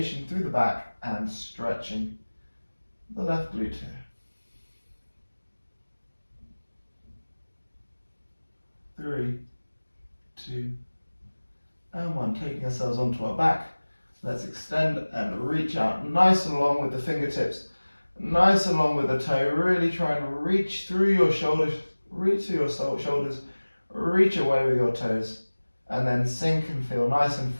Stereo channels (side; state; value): both; inverted; correlation -1.00